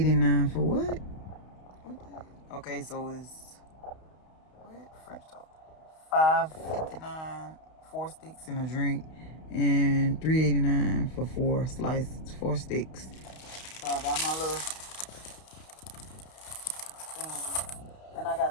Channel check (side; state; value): right; late; 32 ms